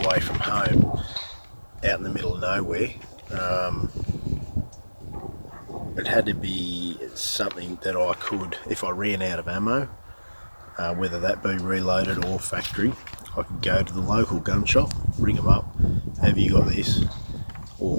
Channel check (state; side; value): inverted; both; correlation -1.00